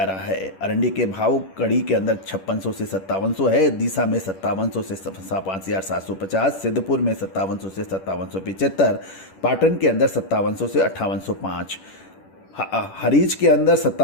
रहा है। आरएनडी के भाव कड़ी के अंदर 5600 से 5700 है, दीसा में 5700 से 5750, सिद्धपुर में 5700 से 5775, पाटन के अंदर 5700 से 5805, हरीज के अंदर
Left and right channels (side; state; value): right; late; 10 ms